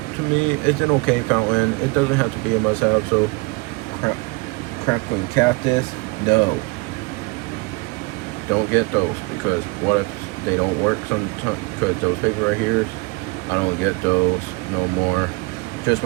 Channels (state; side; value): quieter; left; 27.1 dB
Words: To me, it's an okay fountain. It doesn't have to be a must-have. So crackling cactus, no, don't get those, because what if they don't work sometimes? Because those paper right here, I don't get those no more. Just